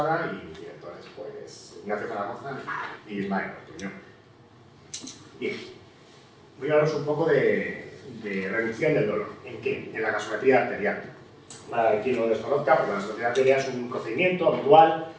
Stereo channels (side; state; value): both; identical; correlation 1.00